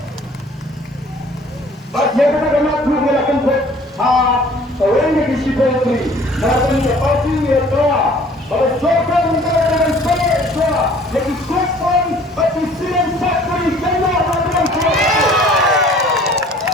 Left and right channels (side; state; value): both; normal; correlation 0.52